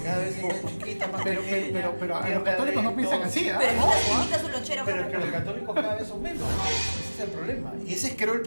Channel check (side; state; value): both; inverted; correlation -1.00